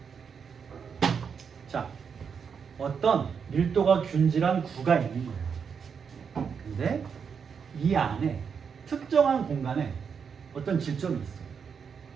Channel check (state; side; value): quieter; left; 6.5 dB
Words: 자, 어떤 밀도가 균질한 구가 있는 거예요. 근데 이 안에 특정한 공간에 어떤 질점이 있어요.